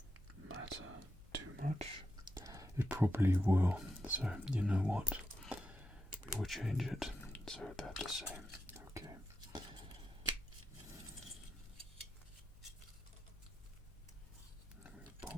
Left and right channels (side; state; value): both; normal; correlation 0.86